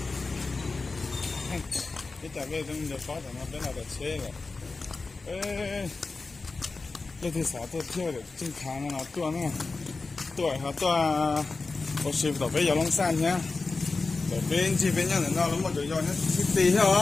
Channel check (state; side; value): quieter; right; 3.9 dB